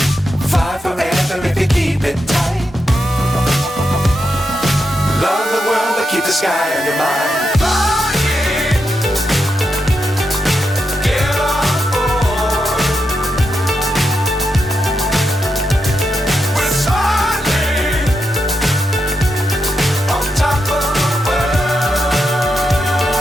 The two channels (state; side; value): normal; both; correlation 0.85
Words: Fly forever if you keep it tight. Love the world but keep the sky on your mind.